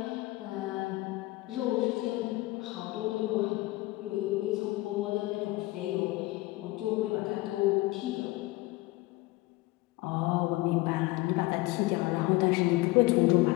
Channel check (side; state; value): right; quieter; 20.5 dB